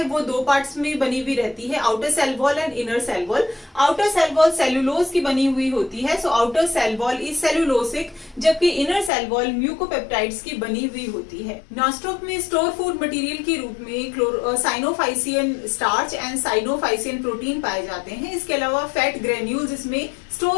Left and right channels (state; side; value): drops out; right; at 9.1 s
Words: वो दो पार्ट्स में बनी हुई रहती है, outer cell wall and inner cell wall. Outer cell wall cellulose की बनी हुई होती है, so outer cell wall is cellulosic, जबकि इनर सेल वॉल म्यूकोपेप्टाइड्स की बनी हुई होती है। नॉस्टॉक में स्टोर फूड मटेरियल के रूप में cyanophycean starch and cyanophycean protein पाए जाते हैं। इसके अलावा फैट ग्रेन्यूल्स इसमें